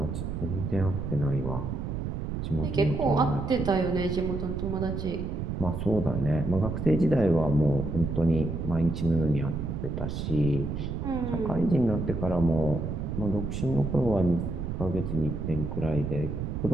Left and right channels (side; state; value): right; noise; rumble, 4 dB below the sound